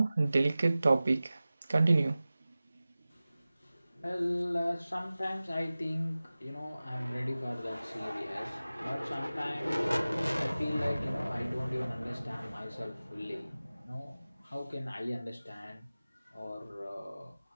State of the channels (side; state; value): both; inverted; correlation -0.97